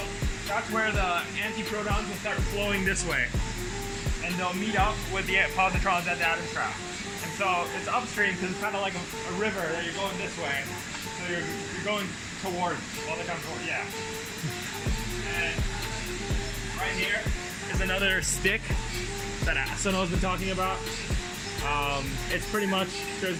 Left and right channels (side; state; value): both; identical; correlation 1.00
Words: that's where the antiprotons will start flowing this way. And they'll meet up with the positrons at the atom trap. And so, it's upstream because it's kind of like a river that you're going this way. So you're going towards, all the time towards, yeah. And right here is another stick that Sunho's been talking about. It's pretty much,